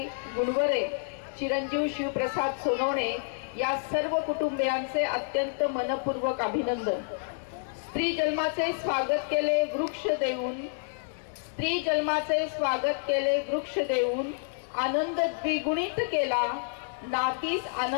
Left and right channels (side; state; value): right; silent; 59 dB below the other